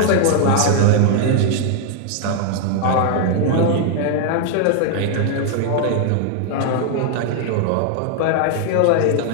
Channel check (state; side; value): different; both; correlation 0.00